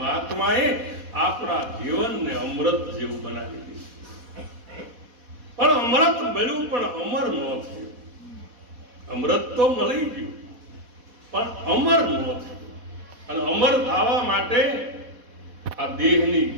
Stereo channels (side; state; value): left; late; 4.1 ms